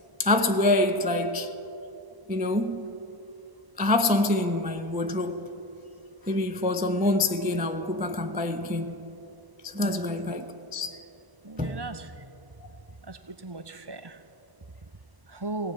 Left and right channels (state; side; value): late; left; 1.0 ms